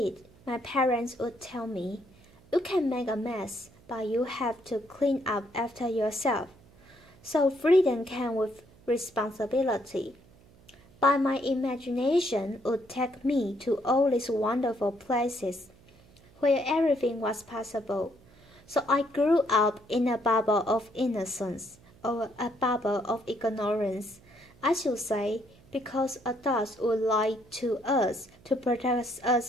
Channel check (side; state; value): right; noise; hum, 26 dB below the sound